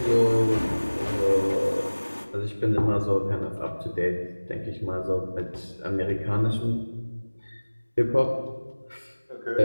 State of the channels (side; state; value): both; inverted; correlation -1.00